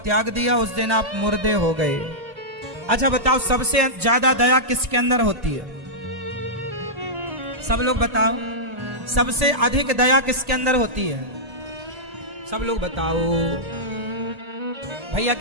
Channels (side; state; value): left; late; 1.9 ms